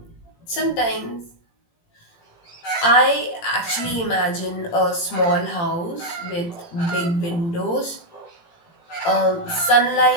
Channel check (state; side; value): late; right; 17 ms